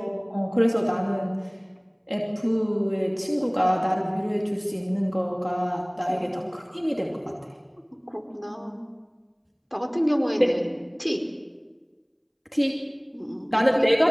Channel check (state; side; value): identical; both; correlation 1.00